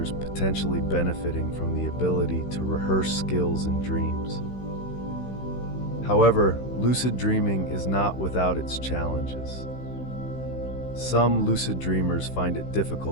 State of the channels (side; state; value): right; late; 16 ms